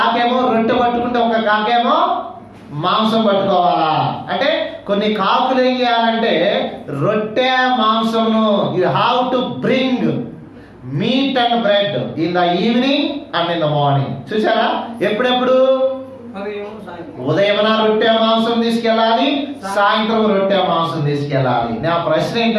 రొట్టె పట్టుకుంటే ఒక కాకేమో మాంసం పట్టుకోవాలా. అంటే కొన్ని కాకులు ఏం చేయాలంటే రొట్టె మాంసమును you have to bring meat and bread in the evening and in the morning. చూసారా? ఎప్పుడెప్పుడు? ఉదయమున రొట్టె మాంసం తీసుకెళ్ళాలి, సాయంత్రం రొట్టె మాంసం తీసుకెళ్ళాలి. నా ప్రశ్న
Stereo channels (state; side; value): identical; both; correlation 1.00